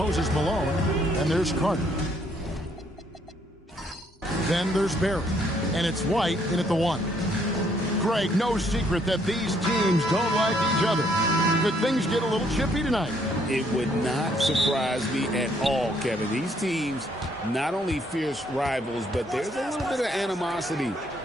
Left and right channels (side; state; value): both; normal; correlation 0.68